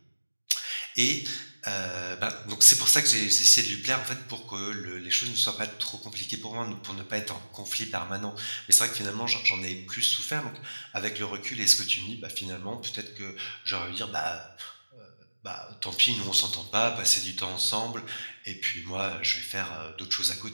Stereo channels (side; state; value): both; inverted; correlation -1.00